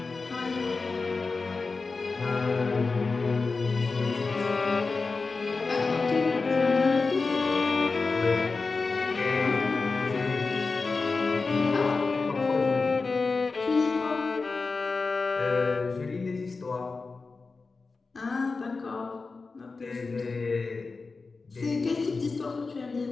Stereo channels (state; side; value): quieter; right; 4.1 dB